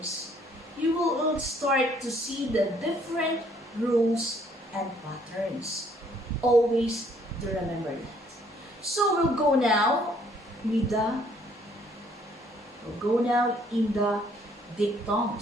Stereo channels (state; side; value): normal; both; correlation 0.63